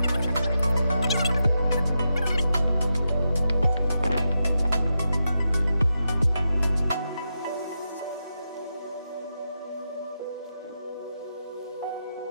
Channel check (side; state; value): both; inverted; correlation -0.87